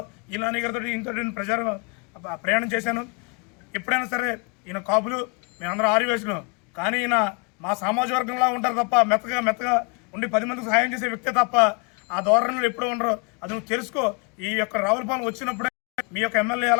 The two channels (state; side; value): quieter; right; 32.6 dB